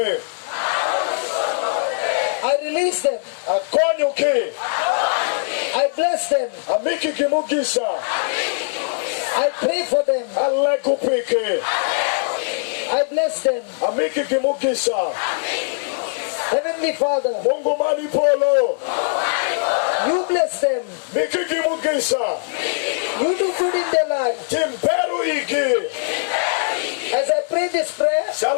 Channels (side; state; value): right; silent; digital silence